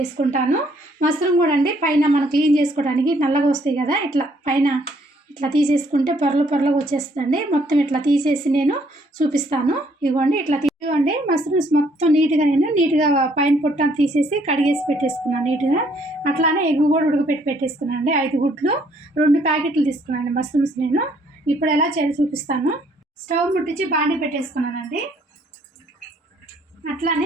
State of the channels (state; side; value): normal; both; correlation 0.66